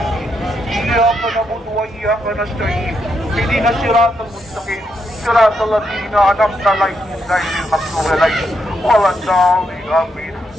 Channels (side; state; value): both; normal; correlation 0.80